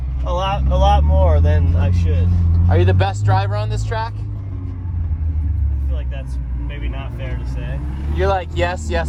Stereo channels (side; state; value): both; identical; correlation 1.00